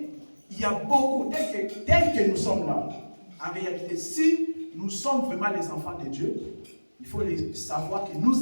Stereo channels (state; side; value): inverted; both; correlation -1.00